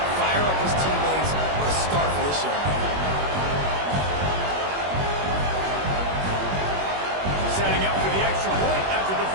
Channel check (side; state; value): left; late; 21 ms